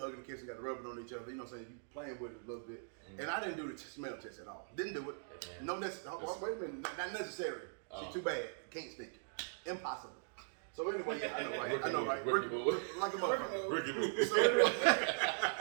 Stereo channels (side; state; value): left; silent; digital silence